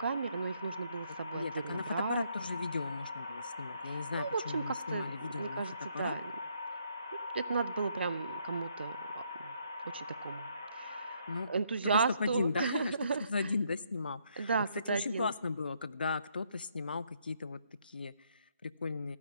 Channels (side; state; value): both; inverted; correlation -0.72